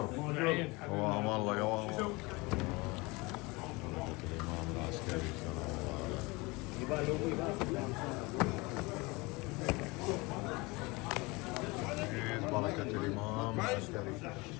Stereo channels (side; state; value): right; quieter; 24.8 dB